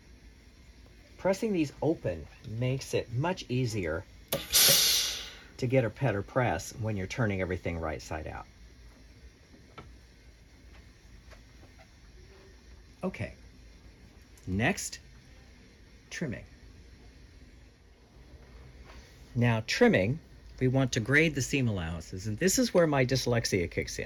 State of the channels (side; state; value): both; identical; correlation 1.00